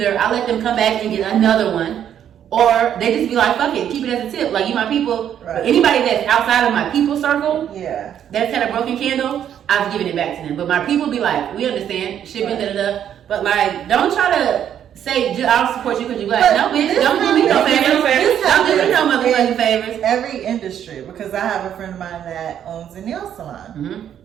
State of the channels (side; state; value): left; quieter; 9.7 dB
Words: I let them come back and get another one, or they just be like, fuck it, keep it as a tip. Like, you my people. Right. But anybody that's outside of my people circle, Yeah. that's had a broken candle, I've given it back to them. But my people be like, we understand, shipping, Right. da-da-da. But like, don't try to say, I'll support you because you black. But No, bitch, this don't do me no happens- favors. this Don't do me no happens motherfucking in favors. Every industry, because I have a friend of mine that owns a nail salon. Mm-hmm.